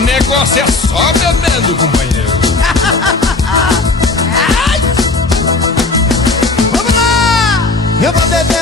é só bebendo, companheiro. Eu vou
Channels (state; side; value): quieter; right; 3.5 dB